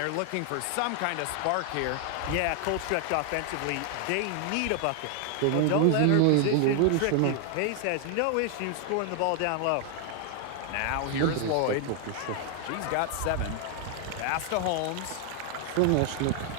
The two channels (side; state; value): both; different; correlation 0.00